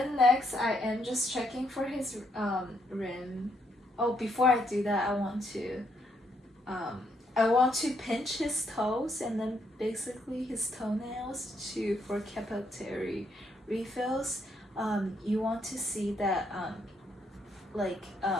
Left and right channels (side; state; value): both; normal; correlation 0.74